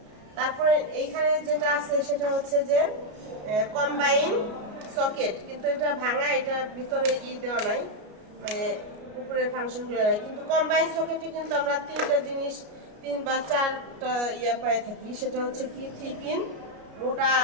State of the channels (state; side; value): late; left; 33 ms